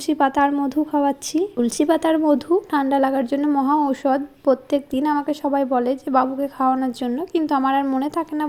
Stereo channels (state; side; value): identical; both; correlation 1.00